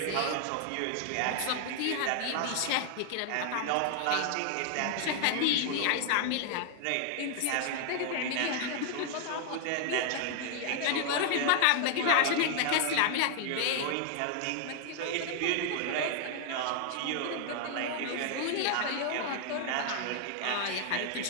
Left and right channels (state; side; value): different; both; correlation 0.00